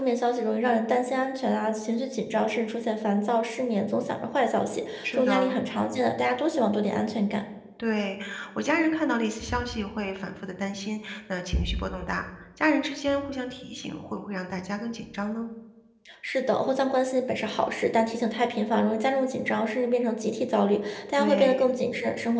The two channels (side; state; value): both; identical; correlation 1.00